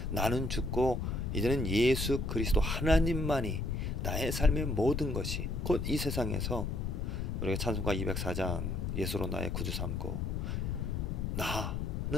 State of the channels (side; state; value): left; noise; rumble, 1 dB below the sound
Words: 나는 죽고 이제는 예수 그리스도 하나님만이 나의 삶의 모든 것이 곧 이 세상에서 우리가 찬송가 204장 예수로 나의 구주 삼고